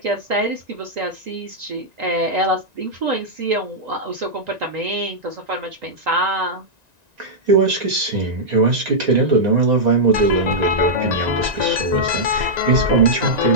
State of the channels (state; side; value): late; left; 1.9 ms